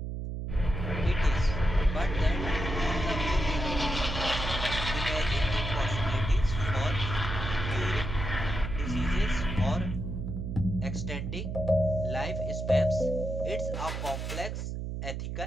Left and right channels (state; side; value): noise; right; hum, 4 dB below the sound